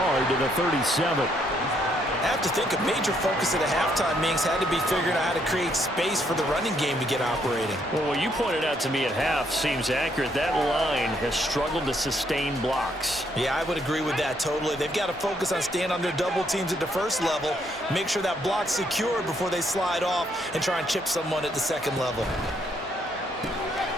to the 37. I have to think a major focus at a halftime means had to be figuring out how to create space for the running game to get operating. Well, what you pointed out to me at half seems accurate. That line has struggled to sustain blocks. Yeah, I would agree with that totally. They've got to focus on staying on their double teams at the first level, make sure that block's secured before they slide off and try and chip someone at the second level.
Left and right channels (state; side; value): normal; both; correlation 0.72